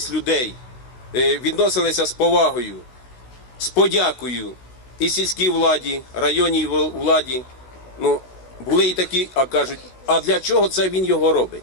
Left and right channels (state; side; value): late; right; 16 ms